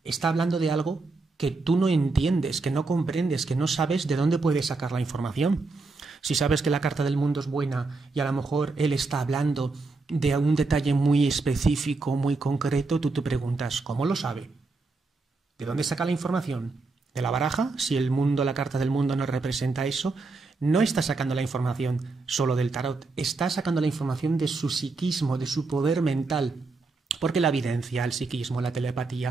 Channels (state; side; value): quieter; left; 3.8 dB